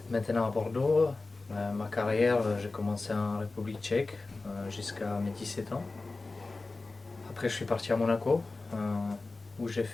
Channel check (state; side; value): quieter; right; 3.5 dB